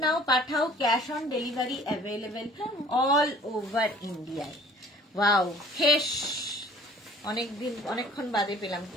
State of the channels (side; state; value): both; normal; correlation 0.52